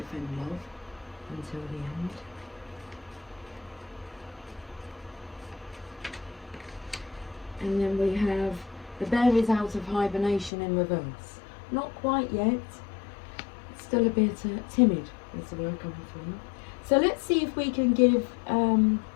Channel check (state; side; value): drops out; right; at 10.5 s